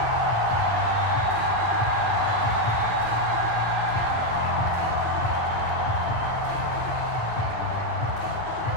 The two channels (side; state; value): right; late; 9.6 ms